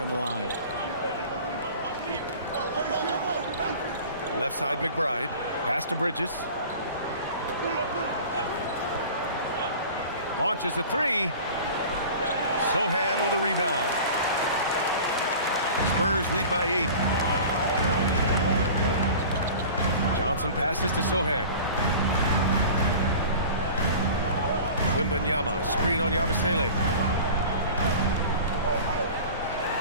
the line. Left side McBride. Pass to Bridges. Launches a 3. Sohan with a rebound. Spurs lead by 8. Johnson passes to Sohan. Wembanyama, screen on Yabusele.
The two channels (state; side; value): inverted; both; correlation -0.39